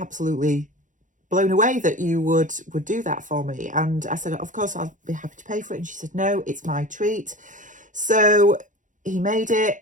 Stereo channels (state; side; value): late; left; 0.37 ms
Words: blown away that you would do that for me. And I said, of course, I'll be happy to pay for it. And she said, no, it's my treat. So he made